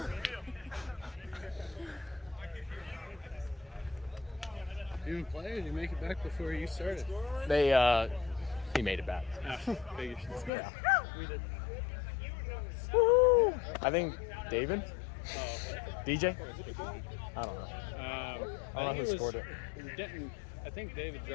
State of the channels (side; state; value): right; drops out; at 10.5 s